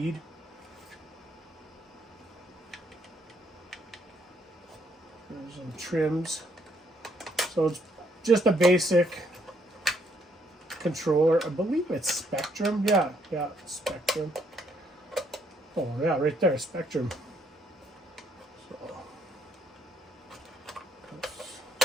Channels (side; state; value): both; normal; correlation 0.71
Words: There's some trims. So it's just a basic controller. I believe it's Spectrum. Yeah, Spectrum. Oh yeah, right there, Spectrum. So